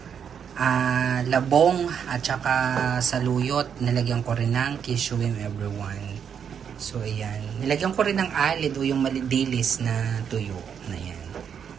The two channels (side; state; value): left; quieter; 7.7 dB